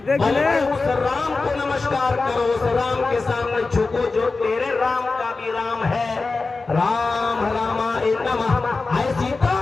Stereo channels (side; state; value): right; quieter; 3.9 dB